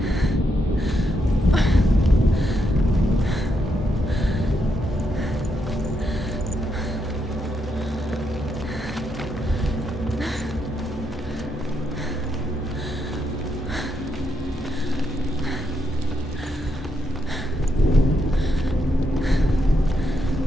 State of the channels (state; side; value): normal; both; correlation 0.80